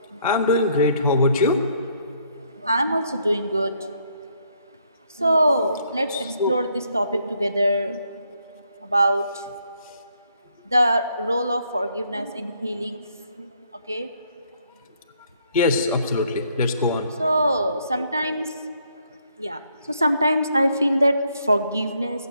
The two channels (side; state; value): both; inverted; correlation -0.70